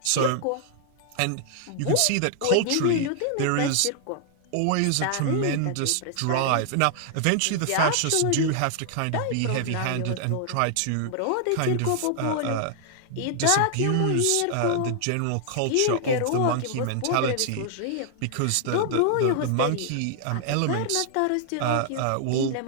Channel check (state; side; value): different; both; correlation -0.01